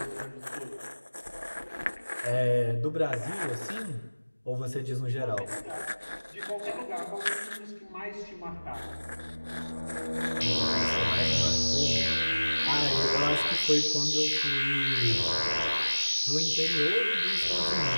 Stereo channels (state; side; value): inverted; both; correlation -1.00